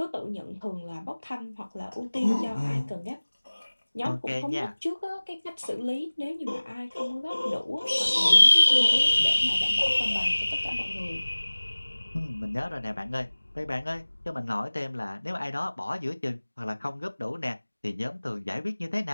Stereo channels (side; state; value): both; inverted; correlation -1.00